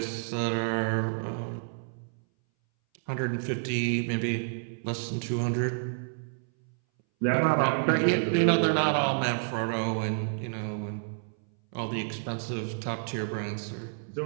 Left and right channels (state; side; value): silent; left; 58 dB below the other